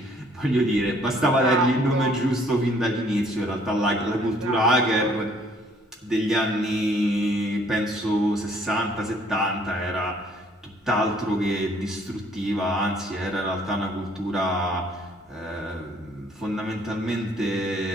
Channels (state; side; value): normal; both; correlation 0.61